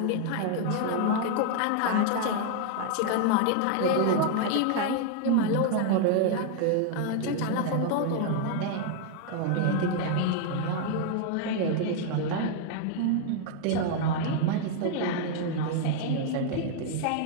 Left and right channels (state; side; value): different; both; correlation 0.00